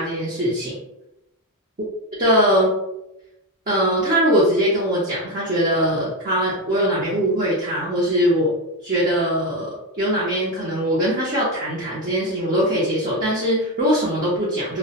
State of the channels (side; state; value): both; normal; correlation 0.12